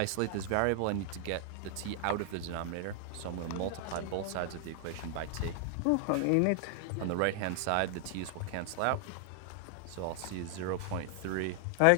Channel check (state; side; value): different; both; correlation 0.00